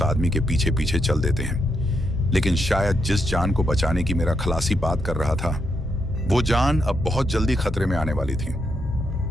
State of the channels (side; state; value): both; normal; correlation 0.80